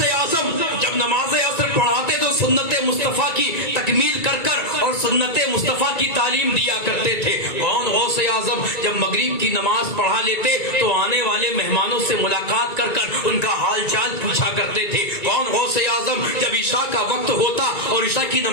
اعظم جب نماز عصر پڑھاتے تو سنت مصطفیٰ کی تکمیل کر کر اور سنت مصطفیٰ کی تعلیم دیا کرتے تھے؟ کون غوث اعظم جب مغرب کی نماز پڑھا لیتے تو آنے والے مہمانوں سے ملاقات کر کر ان کا حال چال پوچھا کرتے تھے؟ کون غوث اعظم جب عشاء کا وقت ہوتا اور عشاء کی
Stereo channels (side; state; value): right; late; 2.3 ms